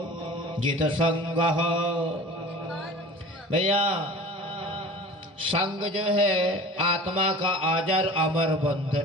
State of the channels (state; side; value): normal; both; correlation 0.40